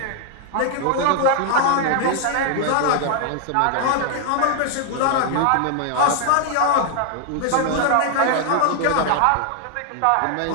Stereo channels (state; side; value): different; both; correlation 0.00